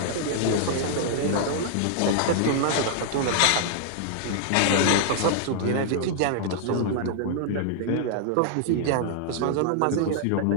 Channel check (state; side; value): different; both; correlation -0.01